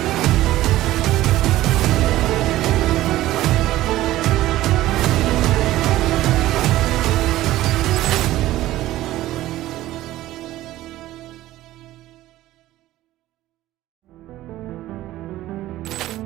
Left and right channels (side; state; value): left; quieter; 15.4 dB